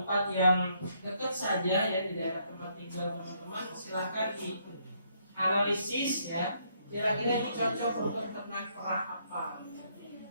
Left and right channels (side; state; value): both; inverted; correlation -0.72